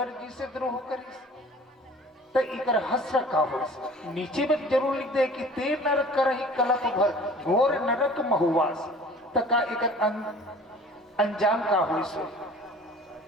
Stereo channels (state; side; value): normal; both; correlation 0.47